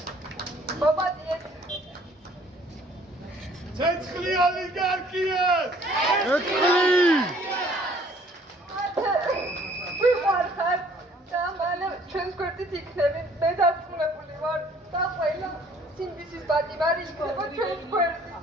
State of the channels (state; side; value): normal; both; correlation 0.58